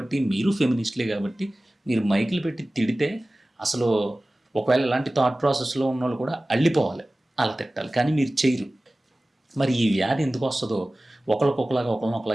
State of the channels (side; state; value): both; normal; correlation 0.97